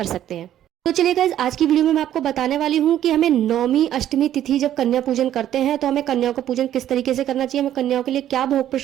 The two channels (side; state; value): left; quieter; 11.6 dB